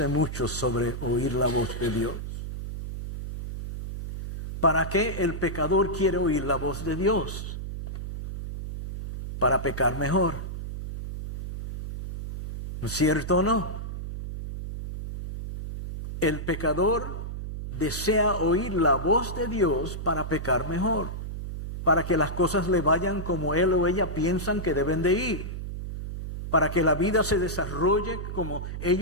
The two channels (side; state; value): right; noise; hum, 7 dB below the sound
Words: mucho sobre oír la voz de Dios. ¿Para qué el pecador quiere oír la voz de Dios? Para pecar mejor. ¿No es cierto o no? El pecador desea oír la voz de Dios para pecar mejor, para que las cosas le vayan como él o ella piensan que deben de ir, para que la vida se desarrolle como